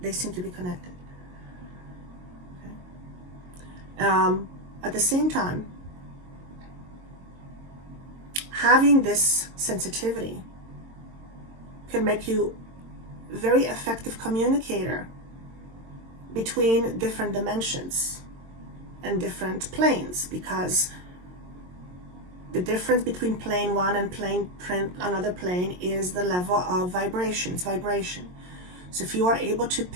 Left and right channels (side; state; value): left; late; 22 ms